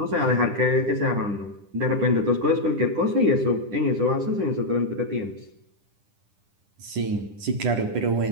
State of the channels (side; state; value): left; late; 10 ms